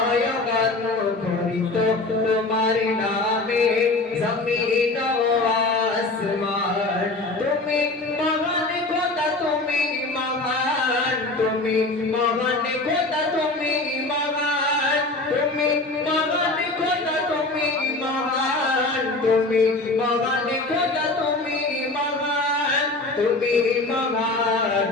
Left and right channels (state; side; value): quieter; right; 3.1 dB